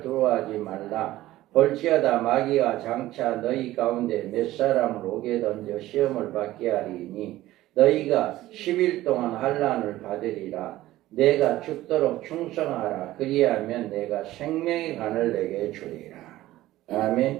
두려워하지 말라. 볼지어다 마귀가 장차 너희 가운데 몇 사람을 오게 던져 시험을 받게 하리니 너희가 10일 동안 환난을 받으리라. 내가 죽도록 충성하라. 그리하면 내가 생명의 간을 내게 주리라.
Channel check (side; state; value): left; quieter; 15.9 dB